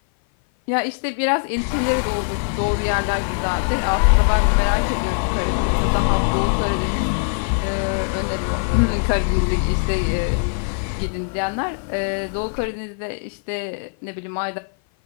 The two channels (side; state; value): right; silent; 55 dB below the other